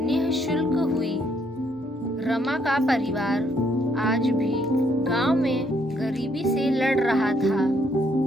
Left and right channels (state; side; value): normal; both; correlation 0.70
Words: हुई। रमा का परिवार आज भी गांव में गरीबी से लड़ रहा था।